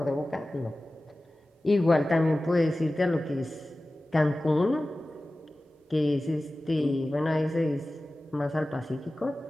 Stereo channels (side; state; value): both; normal; correlation 0.96